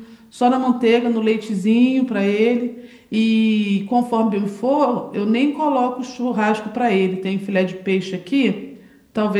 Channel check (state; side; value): identical; both; correlation 1.00